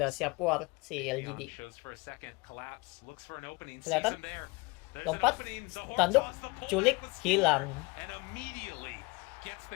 siap war si Leon LGD. shows for a second, collapse, looks for an opening, sees Kelihatan? him there. There's an Lompat, opening, the horn tanduk, toss, the pullback culik, was hilang. and immediately gets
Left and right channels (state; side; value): quieter; right; 26.2 dB